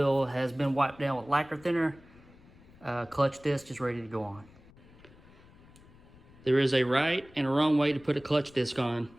has been wiped down with lacquer thinner. Clutch disc is ready to go on. There is a right and a wrong way to put a clutch disc on.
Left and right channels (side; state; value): left; noise; rumble, 24 dB below the sound